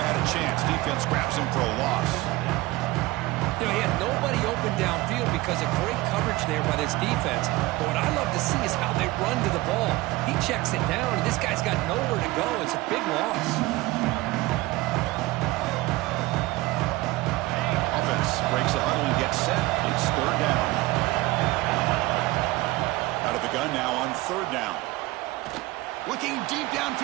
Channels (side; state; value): left; quieter; 19.8 dB